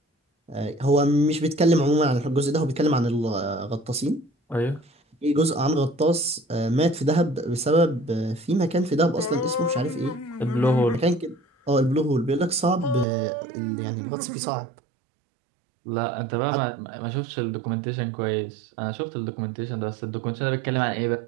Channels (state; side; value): drops out; left; at 13.1 s